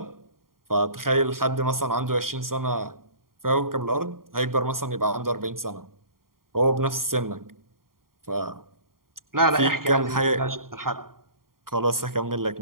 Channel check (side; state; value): left; late; 0.92 ms